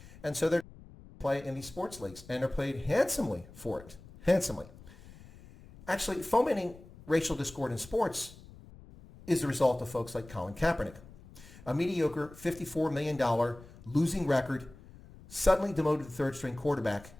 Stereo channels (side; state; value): left; noise; rumble, 20 dB below the sound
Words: And so they're play in these sports leagues, and they're paid handsomely for it. Handsomely. Actually, fomenting racial discord in sports is the result of folks like Colin Kaepernick, a mediocre $54 million losing record, suddenly demoted third-string quarterback